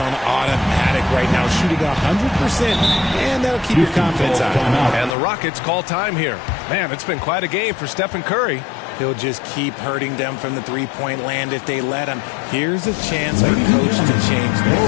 automatic right now, shooting 100%, and that'll keep your confidence high. And the Rockets call time here. Man, it's been quite a game for Stephen Curry. He'll just keep hurting them from the three-point land if they let him. Here's a chance for coach to change that.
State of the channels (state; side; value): drops out; right; at 5.2 s